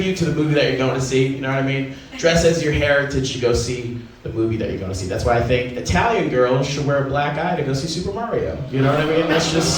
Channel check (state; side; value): identical; both; correlation 1.00